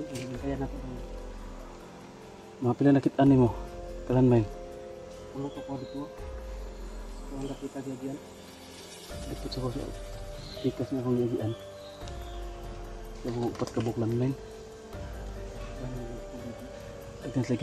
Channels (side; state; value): both; identical; correlation 1.00